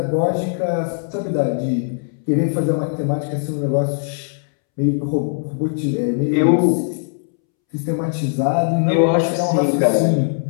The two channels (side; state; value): right; silent; 66 dB below the other